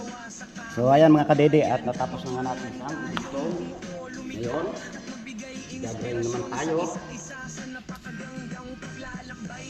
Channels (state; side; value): identical; both; correlation 1.00